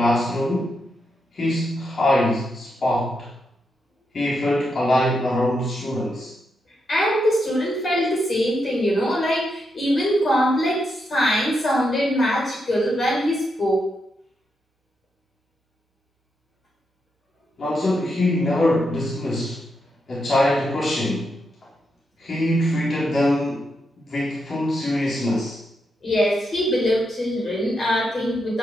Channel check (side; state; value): both; normal; correlation 0.83